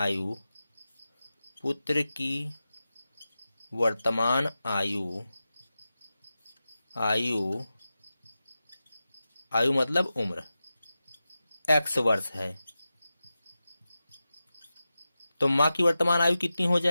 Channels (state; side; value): inverted; both; correlation -0.93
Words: पुत्र की वर्तमान आयु आयु आयु मतलब उम्र x वर्ष है। तो माँ की वर्तमान आयु कितनी हो